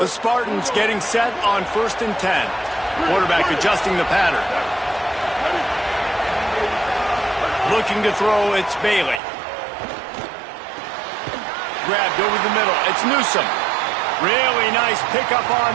The Spartans getting set on 1st and 10. Quarterback adjusting the pattern. Looking to throw, it's Bailey. Grabbed over the middle, it's Newsom. Really nice pickup on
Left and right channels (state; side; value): drops out; left; at 9.2 s